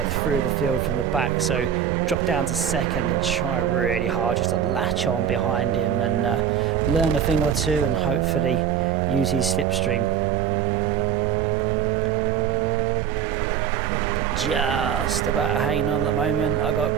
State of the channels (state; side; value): quieter; left; 8.7 dB